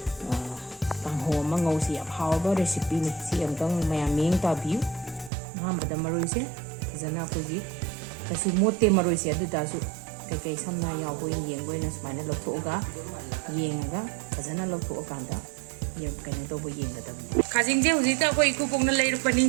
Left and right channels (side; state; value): left; drops out; at 5.3 s